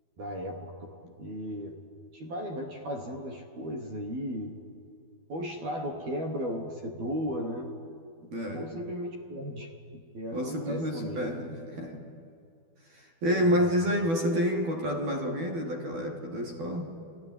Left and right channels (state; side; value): late; left; 12 ms